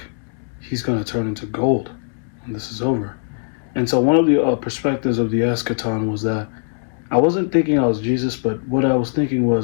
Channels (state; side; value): silent; right; digital silence